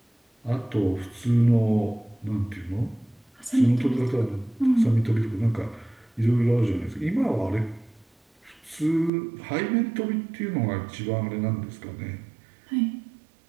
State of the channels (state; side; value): drops out; left; at 9.1 s